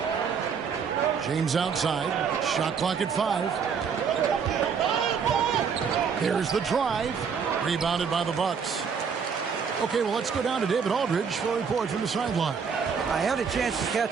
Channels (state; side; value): quieter; left; 6.4 dB